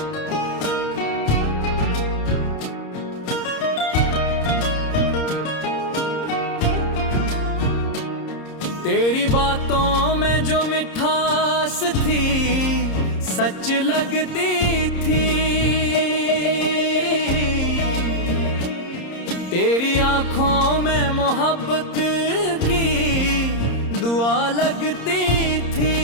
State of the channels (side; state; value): right; late; 30 ms